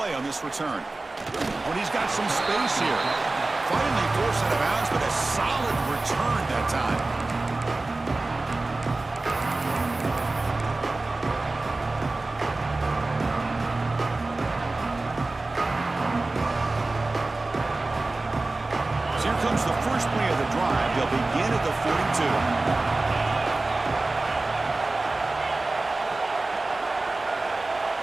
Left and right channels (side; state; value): left; quieter; 3.2 dB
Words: on this return. When he's got some space here. Finally forced out of bounds, but a solid return that time. So here comes the first play of the drive. They'll begin at the 42.